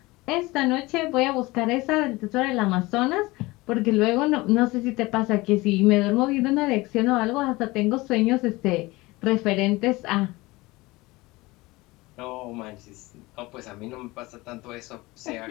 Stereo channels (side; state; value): right; quieter; 21.5 dB